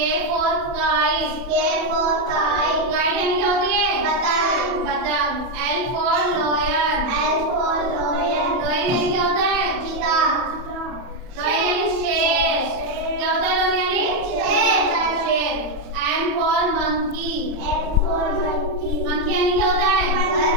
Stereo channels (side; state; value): left; late; 31 ms